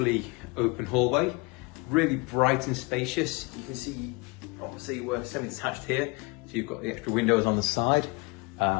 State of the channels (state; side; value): quieter; right; 27.0 dB